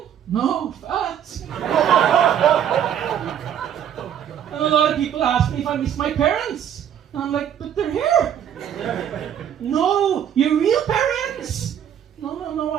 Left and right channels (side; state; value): left; quieter; 9.5 dB